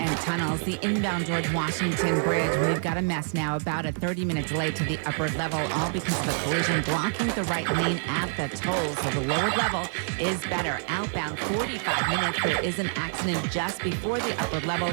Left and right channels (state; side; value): silent; left; 60 dB below the other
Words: tunnels. The inbound George Washington Bridge, we've got a mess now, about a 30-minute delay to the upper level, all because of a collision blocking the right lane at the toll. So the lower level is better. Outbound, 45 minutes. There is an accident just before the upper level